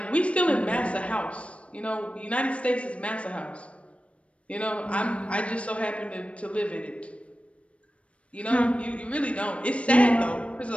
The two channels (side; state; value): right; late; 0.062 ms